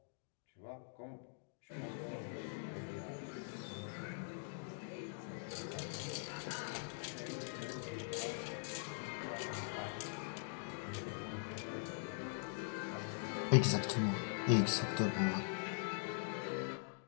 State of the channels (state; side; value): silent; right; digital silence